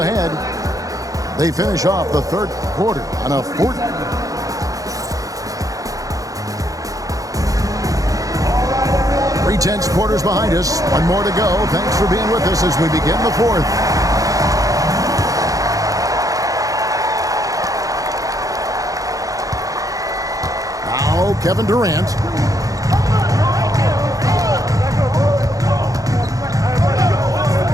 They finish off the third quarter on a 4. 3/10 quarters behind us. 1 more to go. Thanks for being with us as we begin the fourth. Now Kevin Durant.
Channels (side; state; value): left; late; 0.17 ms